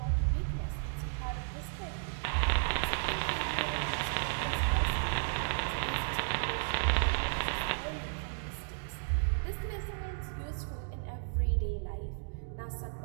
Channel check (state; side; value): silent; left; digital silence